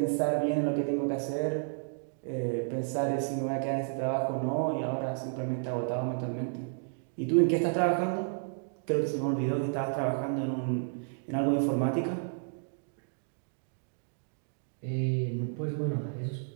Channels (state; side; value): silent; left; digital silence